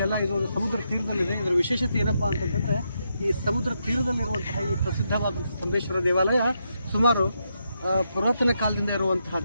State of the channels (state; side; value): inverted; both; correlation -0.82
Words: ಇದು ಸಮುದ್ರ ತೀರದಲ್ಲಿದೆ. ಇದರ ವಿಶೇಷತೆ ಏನಪ್ಪ ಅಂತಂತಂದರೆ, ಈ ಸಮುದ್ರ ತೀರದಲ್ಲಿರುವಂತಹ ಈ ಪ್ರಸಿದ್ಧವಾದ ಸ್ತಂಭೇಶ್ವರ ದೇವಾಲಯ ಸುಮಾರು ಪುರಾತನ ಕಾಲದಿಂದ